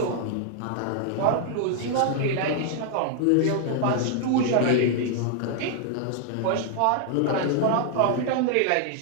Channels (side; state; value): both; different; correlation 0.00